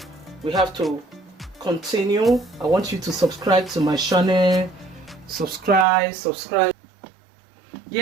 we have to continue. I want you to subscribe to my channel. Subscribe.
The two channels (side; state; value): left; drops out; at 5.9 s